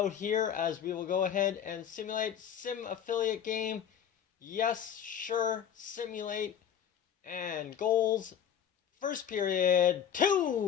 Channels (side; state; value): right; quieter; 8.8 dB